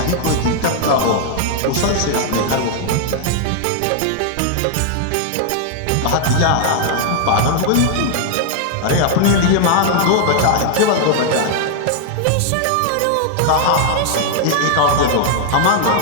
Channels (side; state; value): both; different; correlation 0.00